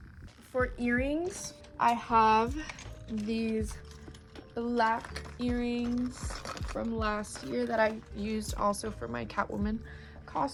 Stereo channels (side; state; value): both; identical; correlation 1.00